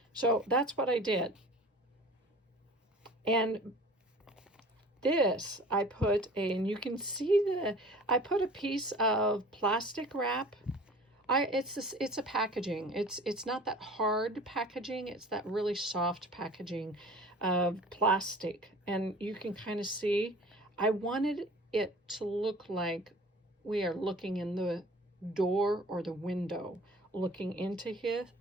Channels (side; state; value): both; normal; correlation 0.45